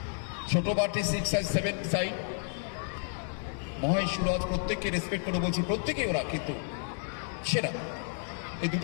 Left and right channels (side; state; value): right; silent; 57 dB below the other